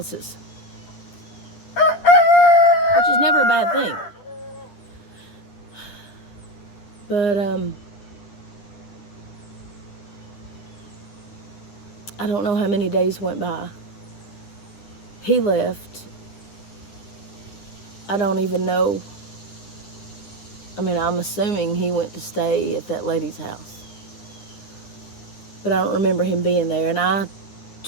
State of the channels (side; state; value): right; late; 10 ms